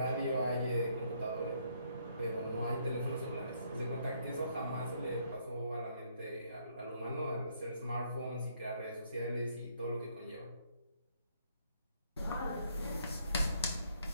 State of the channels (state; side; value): inverted; both; correlation -0.70